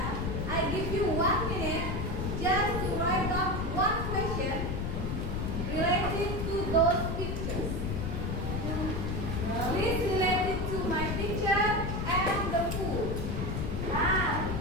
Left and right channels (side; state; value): left; noise; rumble, 1 dB below the sound